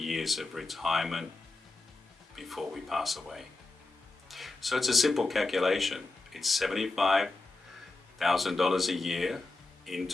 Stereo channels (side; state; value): right; quieter; 3.4 dB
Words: of retirement before we pass away. So it's a simple calculation. It's $75,000 a year in